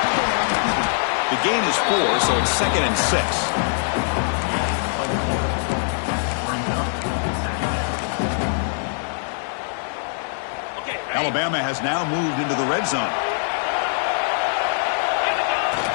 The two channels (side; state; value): right; silent; digital silence